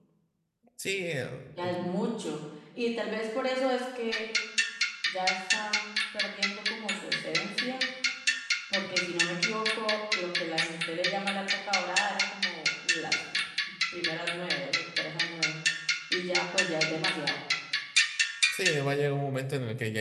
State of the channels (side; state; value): both; identical; correlation 1.00